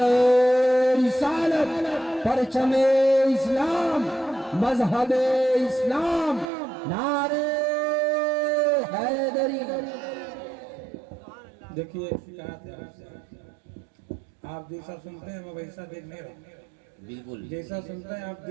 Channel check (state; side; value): drops out; left; at 6.5 s